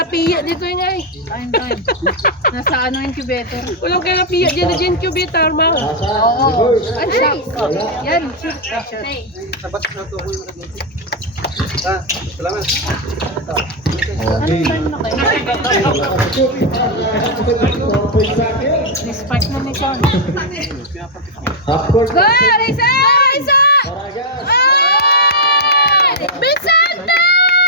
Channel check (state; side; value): normal; both; correlation -0.03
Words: dito yung ay. Time. Nasa ano incubator? Kulang kayo lapiya dyan na incubator, ma. Asa? Ay, siya. Yan. Okay. Spark na ni Sean. Half court. Go, Risa! Risa! Paragas. Ay! Vicente!